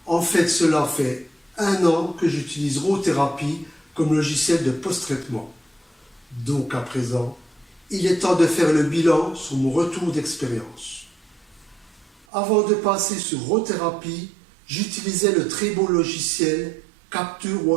En fait, cela fait 1 an que j'utilise Rothérapie comme logiciel de post-traitement. Donc à présent, il est temps de faire le bilan sur mon retour d'expérience. Avant de passer sur Rothérapie, j'utilisais le très bon logiciel Capture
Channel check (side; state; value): left; drops out; at 12.2 s